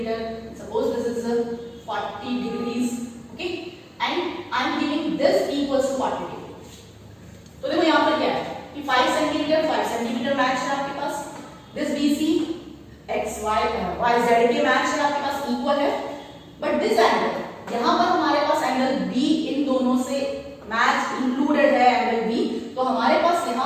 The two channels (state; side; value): identical; both; correlation 1.00